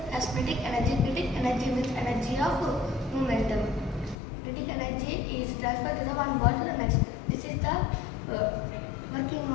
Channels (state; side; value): drops out; right; at 4.2 s